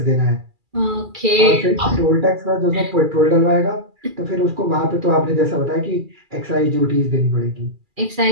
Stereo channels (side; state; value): left; late; 2.3 ms